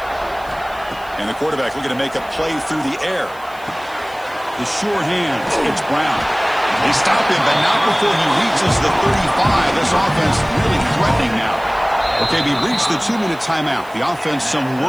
And the quarterback looking to make a play through the air. The sure hands. It's Brown. They stop him, but not before he reaches the 35. This offense really threatening now. Okay, we reached the 2-minute timeout. The offense some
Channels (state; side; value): noise; right; hiss, 24 dB below the sound